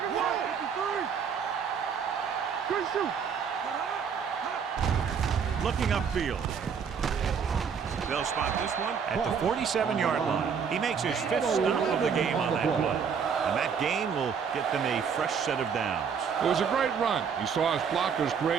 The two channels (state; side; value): quieter; left; 6.7 dB